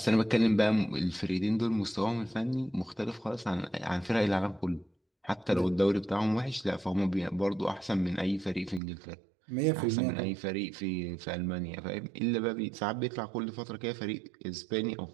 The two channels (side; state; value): left; drops out; at 8.8 s